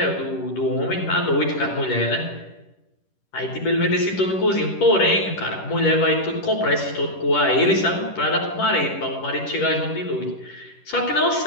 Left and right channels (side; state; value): right; late; 10 ms